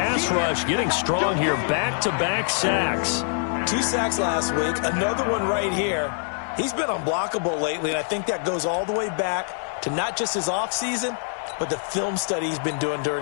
rush getting strong here. Back-to-back sacks. 2 sacks last week, another one right here. He's been unblockable lately, and I think that goes all the way back to not just his offseason, but the film study he's been doing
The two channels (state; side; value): silent; right; digital silence